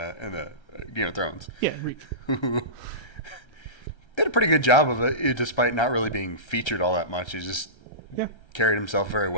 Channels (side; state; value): right; late; 1.3 ms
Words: Game of Thrones. Yeah, Reek. Who did a pretty good job of it, despite not really being featured all that much. He just carried himself very